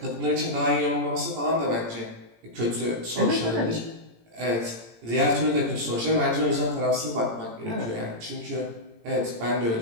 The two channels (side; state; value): left; late; 17 ms